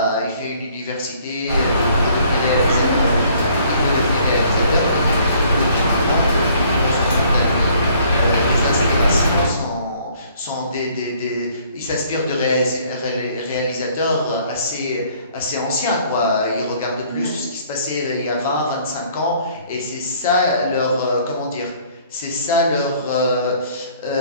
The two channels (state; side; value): inverted; both; correlation -0.60